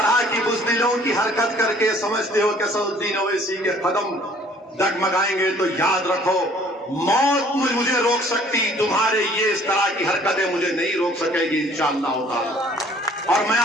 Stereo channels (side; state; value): both; normal; correlation 0.56